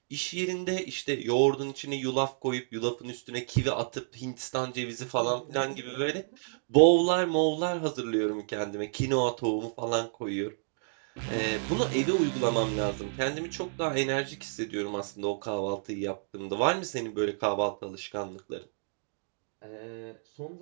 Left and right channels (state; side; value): silent; left; digital silence